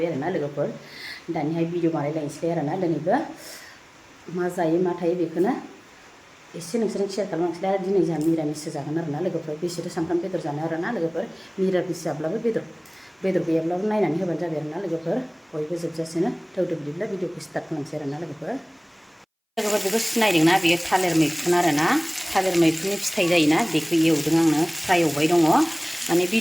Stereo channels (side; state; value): both; identical; correlation 1.00